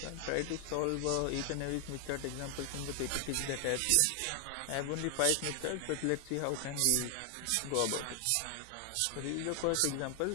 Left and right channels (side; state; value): both; different; correlation 0.00